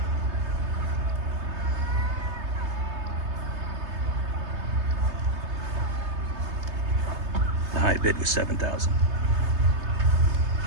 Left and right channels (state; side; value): late; left; 3.3 ms